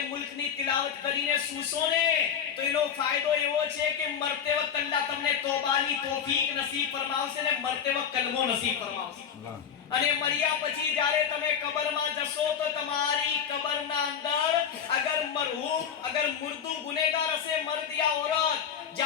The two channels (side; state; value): right; quieter; 7.9 dB